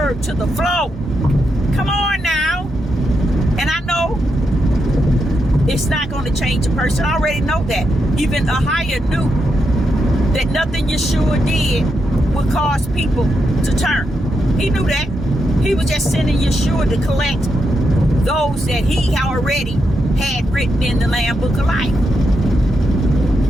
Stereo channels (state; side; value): normal; both; correlation 0.83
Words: to the floor. Come on now. And I know it's not going to change a person. I already know that. Even Ahia knew that nothing Yeshua did would cause people to turn. He knew that. He was just sending Yeshua to collect those that he already had written in the Lamb Book of Life.